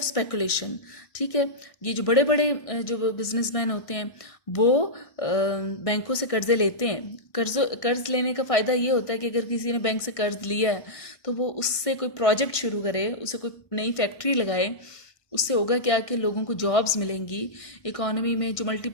स्पेकुलेशन। ठीक है, ये जो बड़े बड़े जो बिजनेसमैन होते हैं वो बैंकों से कर्जे लेते हैं। कर्ज लेने का फ़ायदा ये होता है कि अगर किसी ने बैंक से कर्ज लिया है तो वो उससे कोई प्रोजेक्ट शुरू करे, उससे कोई नई फैक्ट्री लगाए, उससे होगा क्या कि लोगों को जॉब्स मिलेंगी, इकोनॉमी में जो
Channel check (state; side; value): late; right; 1.6 ms